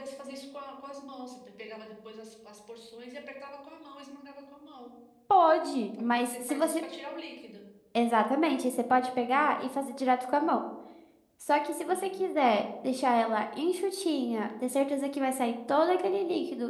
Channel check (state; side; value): identical; both; correlation 1.00